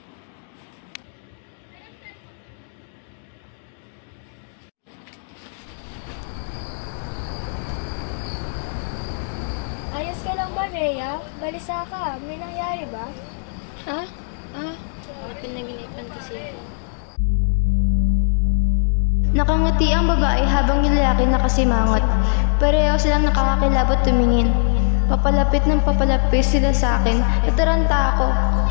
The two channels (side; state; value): right; silent; digital silence